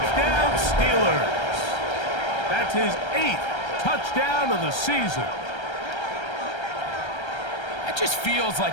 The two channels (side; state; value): right; late; 1.3 ms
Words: Steelers. That's his 8th touchdown of the season. That just feels